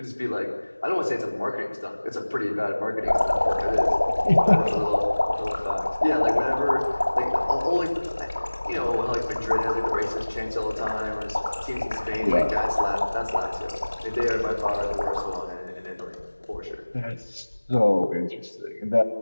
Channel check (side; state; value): both; inverted; correlation -1.00